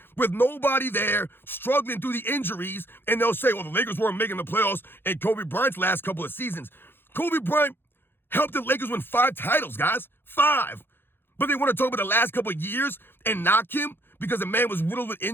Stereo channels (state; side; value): late; right; 0.10 ms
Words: with nobody there, struggling through the injuries, and they'll say, well, the Lakers weren't making the playoffs in Kobe Bryant's last couple of seasons. Kobe Bryant helped the Lakers win 5 titles, guys. 5. But they want to talk about the last couple of years and knock him because the man was riddled with